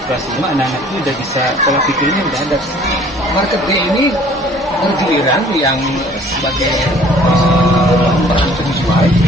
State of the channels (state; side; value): normal; both; correlation 0.54